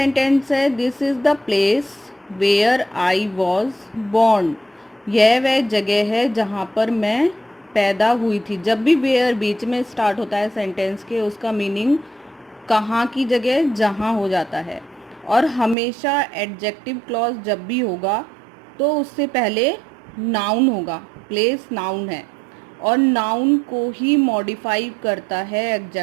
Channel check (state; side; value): drops out; left; at 15.8 s